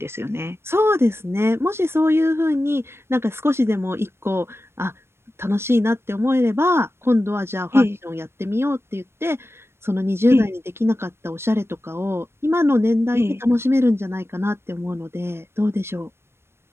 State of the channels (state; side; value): late; left; 0.12 ms